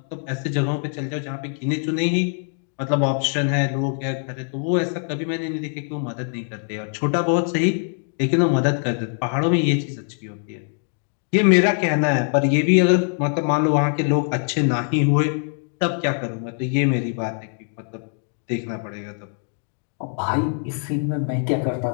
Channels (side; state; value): right; silent; 55 dB below the other